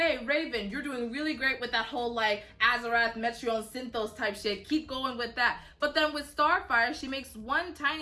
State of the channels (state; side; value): identical; both; correlation 1.00